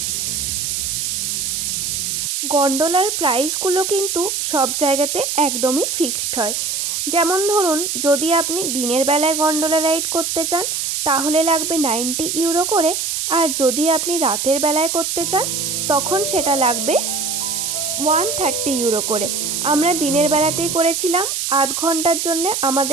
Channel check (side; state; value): right; noise; hiss, 1 dB below the sound